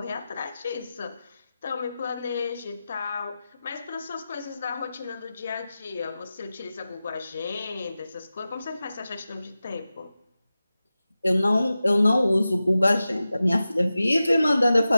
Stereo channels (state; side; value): inverted; both; correlation -0.94